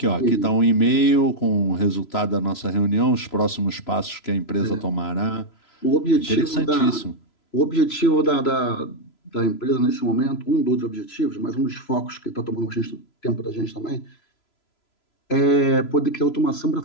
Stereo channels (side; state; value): right; late; 3.0 ms